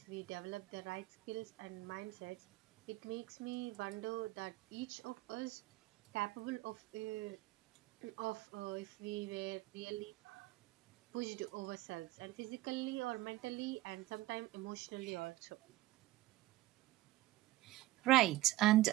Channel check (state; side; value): quieter; left; 17.0 dB